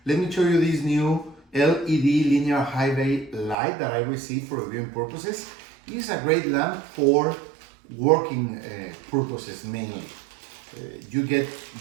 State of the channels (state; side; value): drops out; left; at 3.6 s